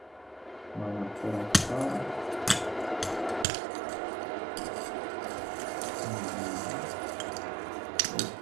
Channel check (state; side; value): drops out; left; at 3.5 s